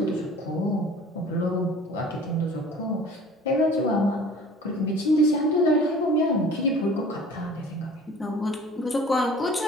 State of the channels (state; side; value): normal; both; correlation 0.46